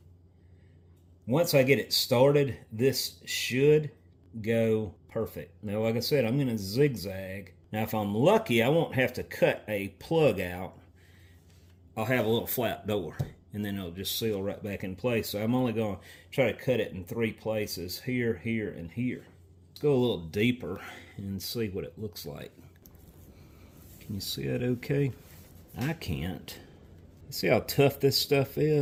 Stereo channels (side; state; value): both; identical; correlation 1.00